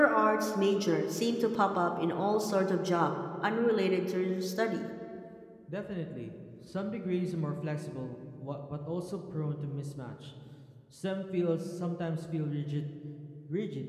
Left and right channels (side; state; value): both; identical; correlation 1.00